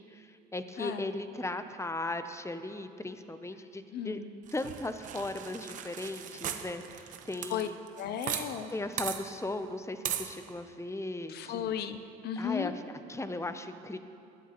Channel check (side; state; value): both; normal; correlation 0.46